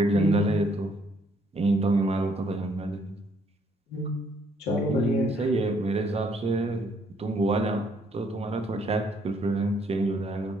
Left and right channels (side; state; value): both; normal; correlation 0.67